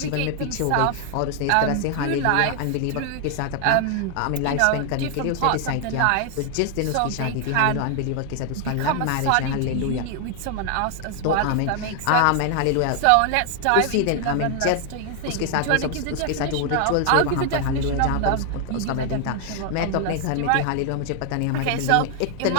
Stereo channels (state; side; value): different; both; correlation 0.00